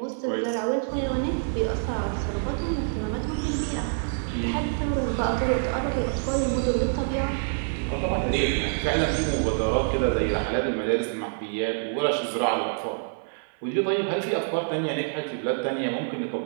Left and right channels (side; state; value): left; silent; 61 dB below the other